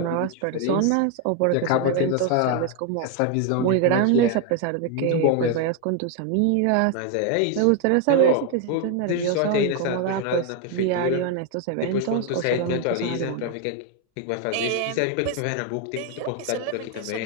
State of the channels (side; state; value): both; different; correlation 0.01